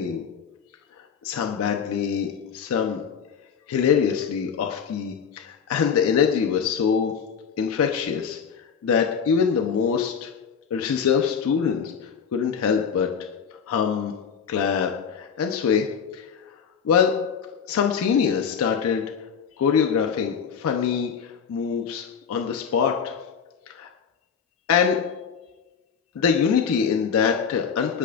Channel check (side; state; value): right; quieter; 6.8 dB